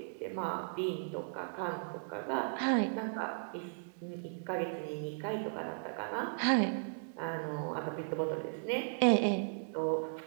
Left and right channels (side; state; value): left; silent; digital silence